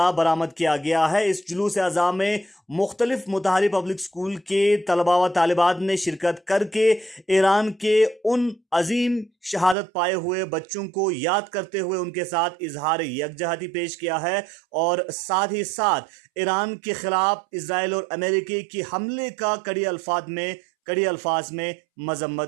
बरामद किया गया है। इस जुलूस अज़ा में मुख्तलिफ मुताहरी पब्लिक स्कूल के तलबा व तालिबात ने शिरकत करके ईरान के उन अजीम शहादत पाए हुए बच्चों को याद करते हुए उनके साथ इजहार यकजहती पेश किया है और साथ ही साथ ईरान के खिलाफ इसराइल और अमेरिकी के हमले का कड़ी अल्फाज में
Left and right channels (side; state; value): left; drops out; at 9.8 s